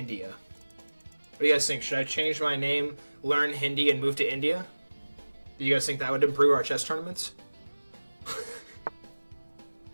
What do you guys think? Should I change my name, learn Hindi, and move to India? Do you guys think that would improve our chess tournaments?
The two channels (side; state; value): both; inverted; correlation -1.00